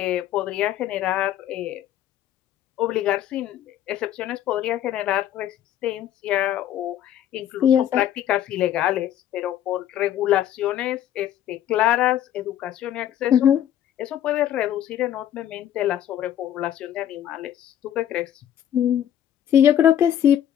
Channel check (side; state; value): right; quieter; 11.0 dB